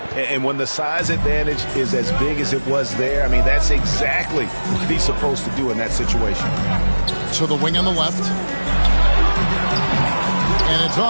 And when the size advantage is as big as it was there, I mean, that's exactly what he's supposed to do in that situation. To the wing on the left. And it's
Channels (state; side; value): inverted; both; correlation -1.00